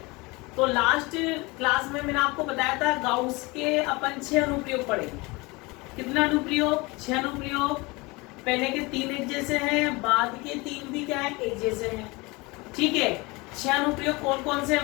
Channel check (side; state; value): right; quieter; 24.7 dB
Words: तो लास्ट क्लास में मैंने आपको बताया था गाउस के अपन 6 अनुप्रयोग पढ़ेंगे। कितना अनुप्रयोग? 6 अनुप्रयोग। पहले के 3 एक जैसे हैं, बाद के 3 भी क्या है, एक जैसे हैं। ठीक है, 6 अनुप्रयोग कौन कौन से हैं